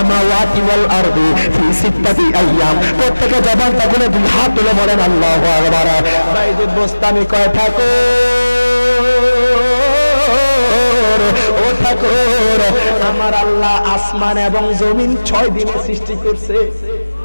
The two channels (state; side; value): inverted; both; correlation -1.00